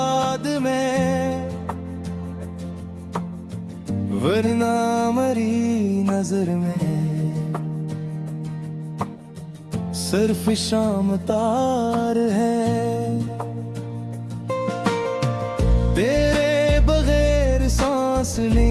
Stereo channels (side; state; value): both; identical; correlation 1.00